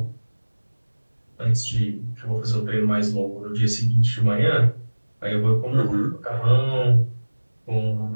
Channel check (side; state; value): both; inverted; correlation -1.00